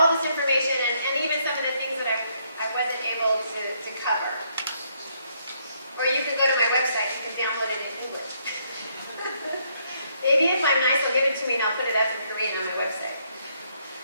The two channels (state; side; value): inverted; both; correlation -0.72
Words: this information and even some of the things that I wasn't able to cover. Or you can go to my website, you can download it in English. Maybe if I'm nice, they'll give it to me and I'll put it up in Korean on my website.